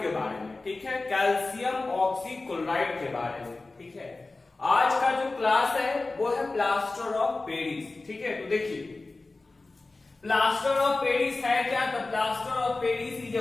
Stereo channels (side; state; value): right; quieter; 3.4 dB